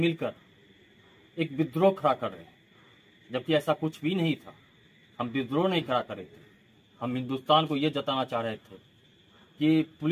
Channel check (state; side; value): identical; both; correlation 1.00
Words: एक विद्रोह खड़ा कर रहे हैं, जबकि ऐसा कुछ भी नहीं था। हम विद्रोह नहीं खड़ा कर रहे थे, हम हिंदुस्तान को ये जताना चाह रहे थे कि